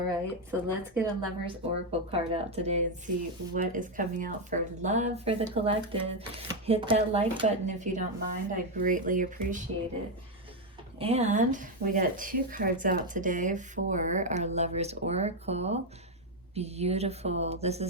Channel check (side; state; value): both; normal; correlation 0.04